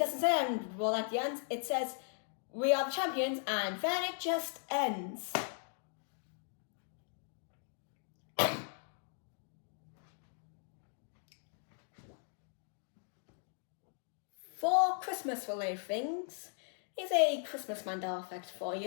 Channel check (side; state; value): right; silent; 52 dB below the other